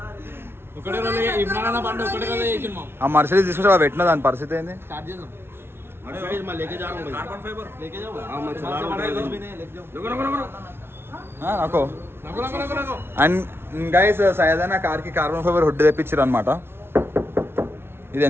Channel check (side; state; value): left; late; 0.12 ms